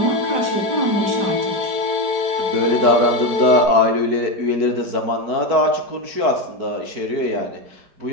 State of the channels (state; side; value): late; left; 4.6 ms